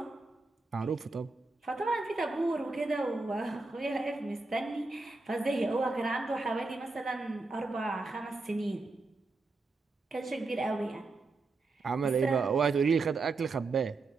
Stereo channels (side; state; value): left; quieter; 3.6 dB